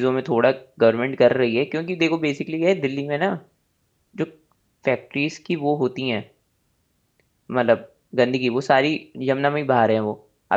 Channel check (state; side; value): identical; both; correlation 1.00